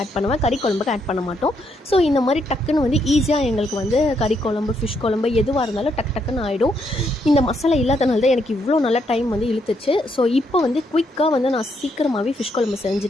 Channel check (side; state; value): both; normal; correlation 0.76